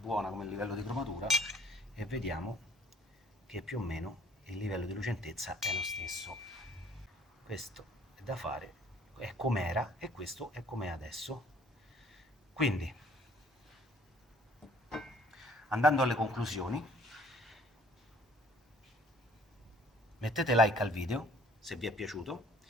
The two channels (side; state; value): both; normal; correlation 0.57